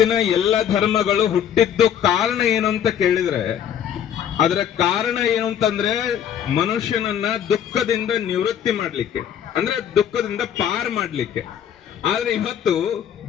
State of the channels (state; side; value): quieter; right; 9.3 dB